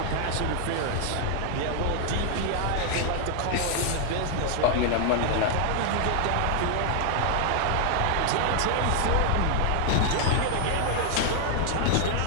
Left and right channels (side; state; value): both; different; correlation 0.00